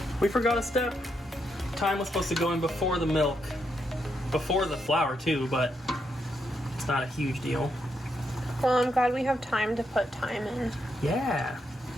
We forgot a step. Thyme was supposed to go in before the milk, before the flour too, but it's not a huge deal. Well, I'm glad we have time to put thyme in. Yeah.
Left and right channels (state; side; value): normal; both; correlation 0.80